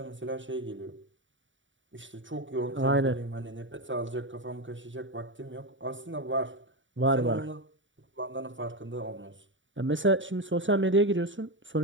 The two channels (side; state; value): left; late; 0.55 ms